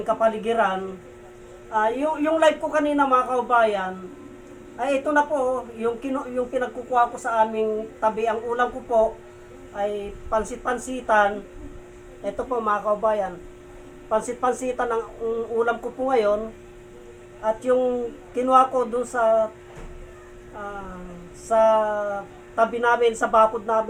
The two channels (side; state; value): both; identical; correlation 1.00